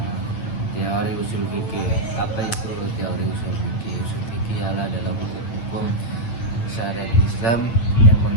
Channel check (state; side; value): late; right; 8.7 ms